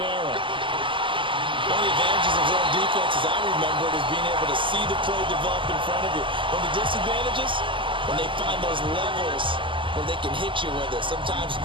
One of the advantages of zone defense, as I remember it, is being able to see the play develop in front of you. One of the disadvantages, when they find those levels where they can hit you with it, sometimes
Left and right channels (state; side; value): late; left; 0.25 ms